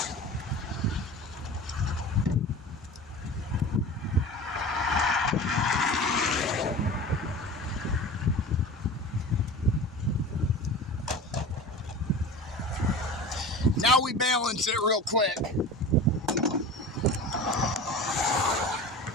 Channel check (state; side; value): normal; both; correlation 0.34